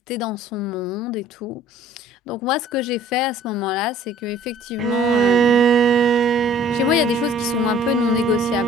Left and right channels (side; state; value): both; normal; correlation 0.53